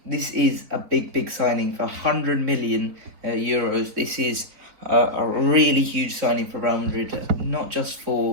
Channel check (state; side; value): late; left; 3.8 ms